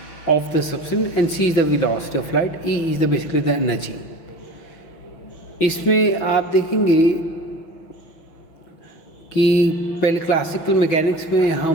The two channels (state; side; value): late; right; 6.1 ms